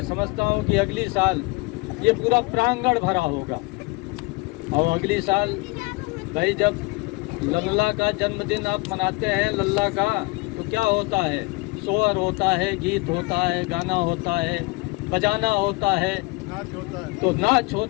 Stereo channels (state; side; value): quieter; right; 25.6 dB